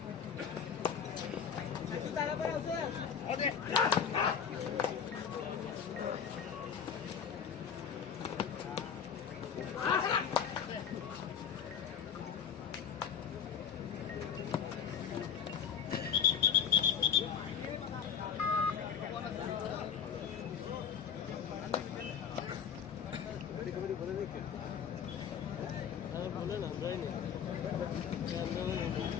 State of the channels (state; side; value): quieter; right; 7.8 dB